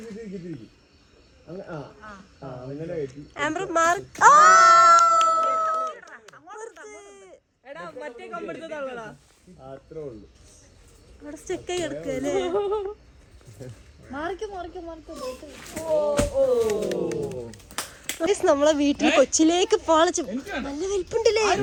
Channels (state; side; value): identical; both; correlation 1.00